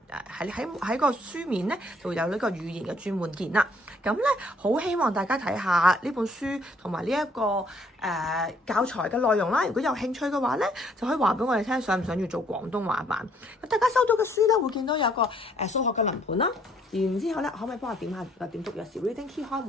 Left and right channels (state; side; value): normal; both; correlation 0.65